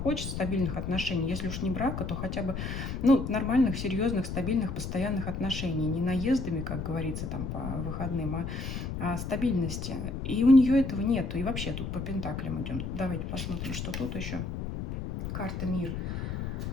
стабильных отношений. Если уж не брака, то хотя бы нормальных, серьезных, стабильных, постоянных отношений. Не наездами, как говорится, там по выходным, а стабильности. И у нее этого нету. И вообще тут по пентаклям идем. Давайте посмотрим, что тут еще. Карта мир.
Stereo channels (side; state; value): left; noise; rumble, 5 dB below the sound